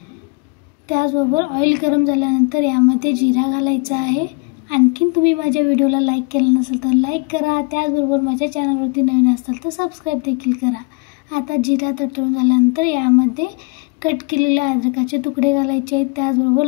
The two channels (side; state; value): right; quieter; 31.5 dB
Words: त्याचबरोबर ऑइल गरम झाल्यानंतर यामध्ये जिरा घालायचा आहे। आणखीन तुम्ही माझ्या व्हिडिओला लाईक केलं नसेल तर लाईक करा, त्याचबरोबर माझ्या चॅनलवरती नवीन असाल तर सबस्क्राईब देखील करा। आता जिरा तडतडून झाल्यानंतर यामध्ये कट केलेले अद्रकाचे तुकडे घालायचे आहेत, त्याचबरोबर